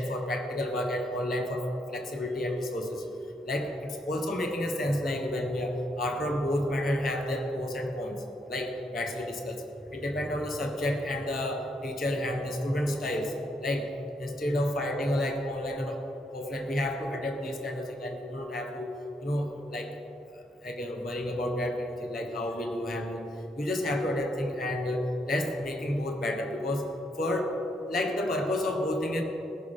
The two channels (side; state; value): both; normal; correlation 0.75